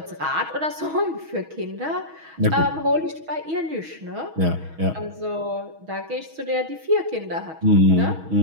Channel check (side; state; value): left; late; 6.3 ms